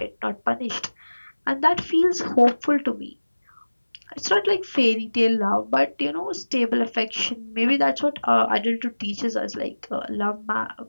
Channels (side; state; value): both; inverted; correlation -1.00